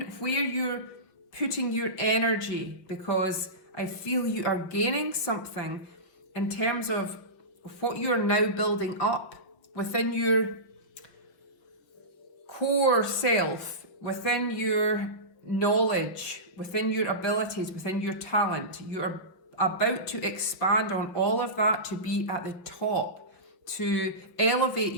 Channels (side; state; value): right; late; 5.7 ms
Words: where you're putting your energy, because I feel you are gaining something in terms of what you are now building up within your core self, within your knowledge, within your abilities, within your talent. You are about to expand on all of that to be at the top, to elevate